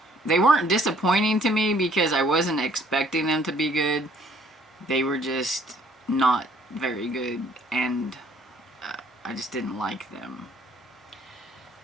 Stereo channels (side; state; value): both; normal; correlation 0.61